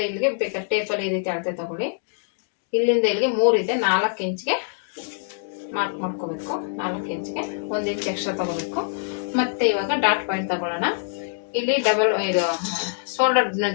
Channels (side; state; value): right; silent; digital silence